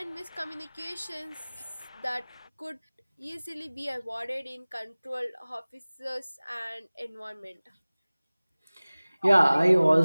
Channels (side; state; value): both; inverted; correlation -1.00